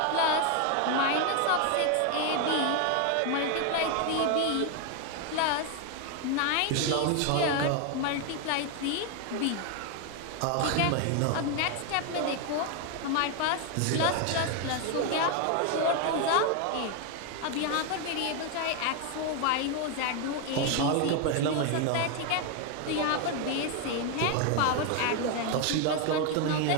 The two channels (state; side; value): different; both; correlation 0.01